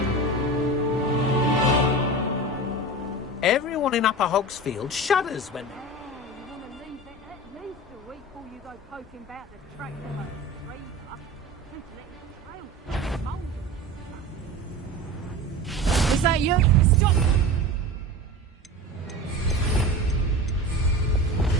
Everyone in Upper Hogsfield shudders when they... Is that you? Stop!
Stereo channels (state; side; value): normal; both; correlation 0.31